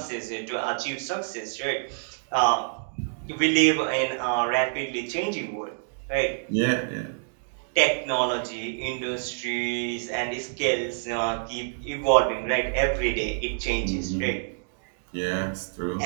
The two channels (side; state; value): left; silent; digital silence